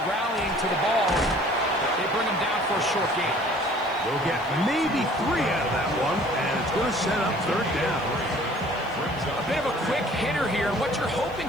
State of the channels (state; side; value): noise; right; hiss, 27 dB below the sound